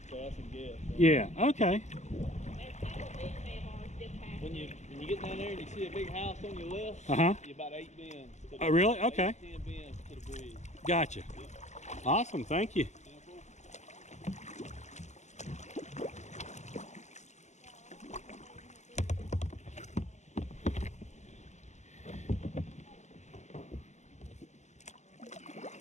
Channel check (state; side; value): late; right; 0.33 ms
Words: So that's a guess. So. Yeah. Okay. When you get down there and you see a big house on your left, you're about 8 bends. Oh, really? Okay. 10 bends to the bridge. Gotcha. Awesome. Thank you.